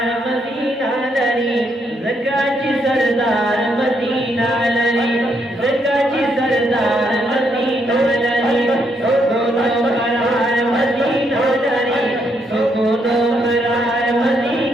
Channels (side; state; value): both; normal; correlation 0.75